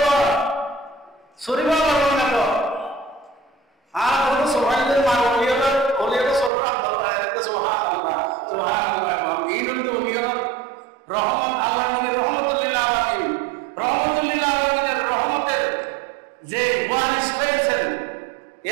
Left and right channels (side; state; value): left; drops out; at 6.5 s